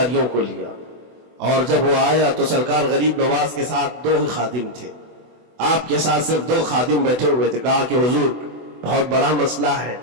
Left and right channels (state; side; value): late; left; 24 ms